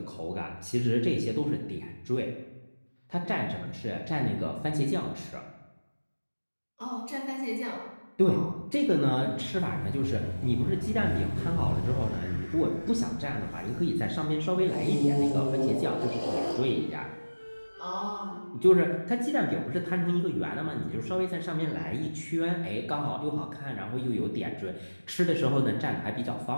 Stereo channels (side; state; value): both; inverted; correlation -1.00